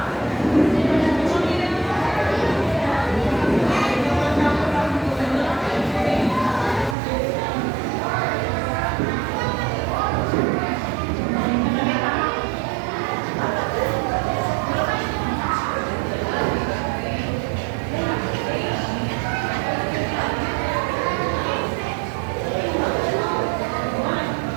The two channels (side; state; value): left; drops out; at 7.0 s